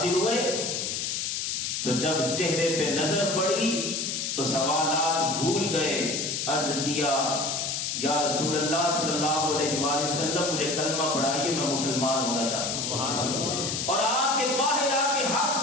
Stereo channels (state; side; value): noise; left; hiss, 1 dB below the sound